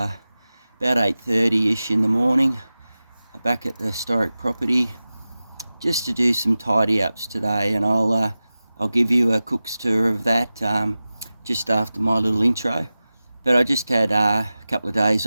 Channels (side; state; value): both; inverted; correlation -0.96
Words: 8:30ish in the morning. Back at the historic property just to do some tidy ups today, and I'll give you a cook's tour of that just after my little intro. But I just had a couple of days